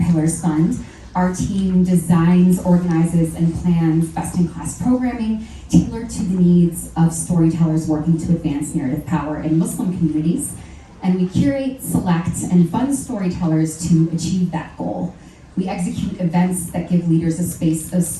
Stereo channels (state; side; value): identical; both; correlation 1.00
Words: Fund. Our team designs, organizes, and plans best-in-class programming tailored to the needs of storytellers working to advance narrative power in Muslim communities. And we curate, select, and fund storytellers to achieve that goal. We execute events that give leaders a space of